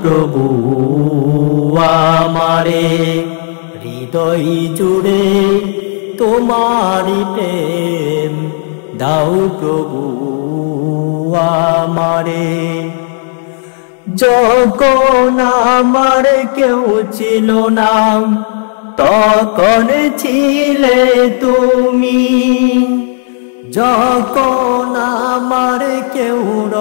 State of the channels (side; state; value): right; silent; digital silence